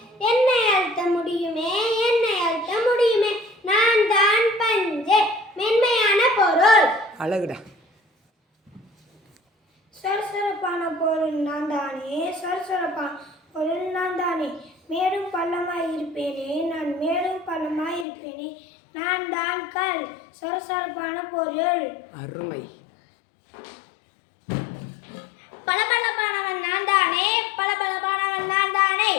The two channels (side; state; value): right; drops out; at 18.1 s